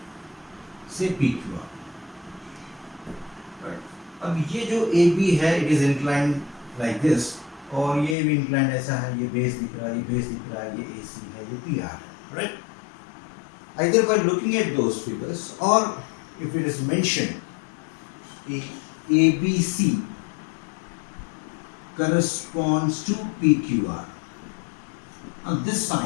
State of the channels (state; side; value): drops out; right; at 8.2 s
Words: say PQR, right? अब ये जो AB है, it is inclined like this. और ये भी inclined ऐसा है, ये बेस दिख रहा है, ये बेस दिख रहा है, ये AC है, ये PR है, right? Either by looking at those figures or if it is mentioned कि ABC corresponds to PQR. Now this